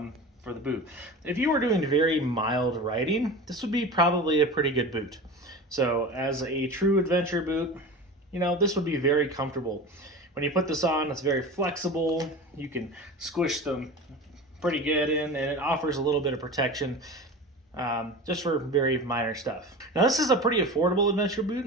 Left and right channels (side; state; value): both; normal; correlation 0.32